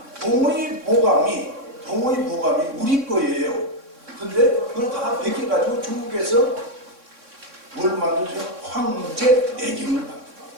동의 보감이 우리 거예요. 근데 그걸 다 베껴가지고 중국에서 뭘 만들죠? 황제 내경을 만들어요.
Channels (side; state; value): left; late; 3.6 ms